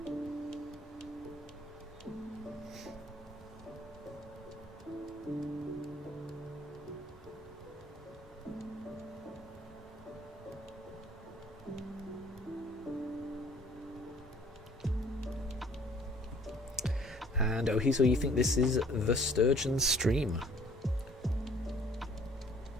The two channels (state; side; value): normal; both; correlation 0.56